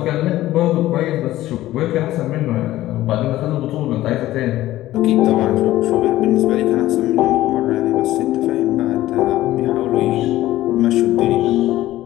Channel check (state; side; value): quieter; right; 15.3 dB